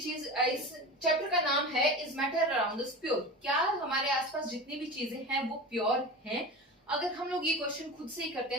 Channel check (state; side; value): normal; both; correlation 0.30